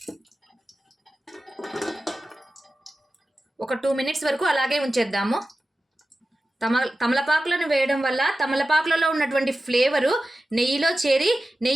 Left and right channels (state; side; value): normal; both; correlation 0.94